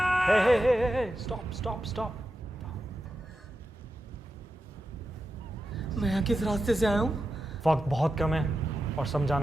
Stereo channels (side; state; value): both; normal; correlation 0.90